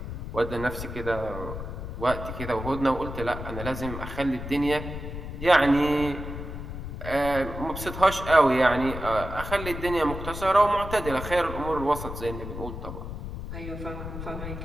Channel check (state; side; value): noise; left; rumble, 8 dB below the sound